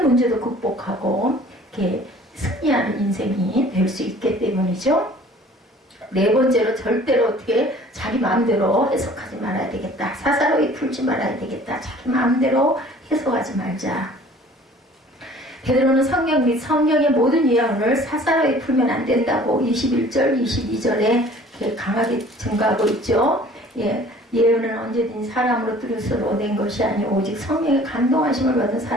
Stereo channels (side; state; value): both; normal; correlation 0.50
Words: 문제도 극복하고 이렇게 승리하는 인생이 될 수 있기 때문이죠. 네 번째로 절대로 어떻게 자기 마음대로 해석하지 말아야 되겠다. 사사로이 풀지 말아야 되겠다. 자기 마음대로 해석하지 말자. 베드로는 성경 및 성경의 모든 예언을 사사로이 풀면 안 된다고 21절, 22절에 강하게 증거하고 있죠. 예언은 언제든지 사람으로 뜻으로 낸 것이 아니오 오직 성령의 감동하심을 받은